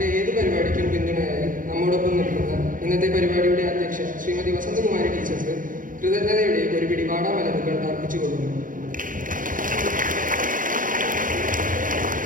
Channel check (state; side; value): late; left; 0.39 ms